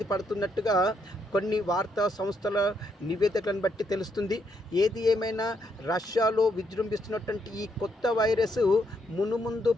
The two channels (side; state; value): both; normal; correlation 0.76